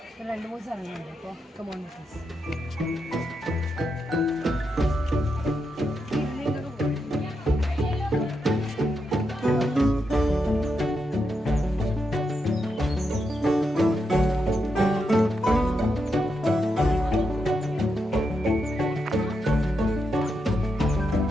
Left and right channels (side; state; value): both; normal; correlation 0.84